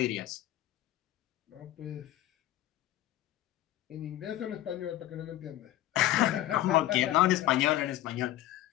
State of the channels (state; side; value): quieter; right; 14.4 dB